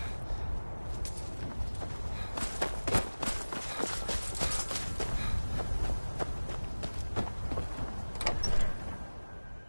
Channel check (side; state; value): both; inverted; correlation -1.00